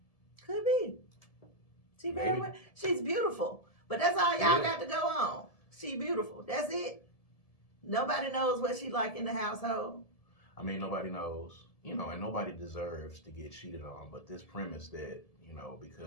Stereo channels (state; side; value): late; right; 1.7 ms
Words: Could be. She's beautiful, but that's all y'all got to go on. She beautiful. That's it. Nobody knows what she like in the household. I mean, nobody knows, and nobody deserves to get cheated on. But this premise that,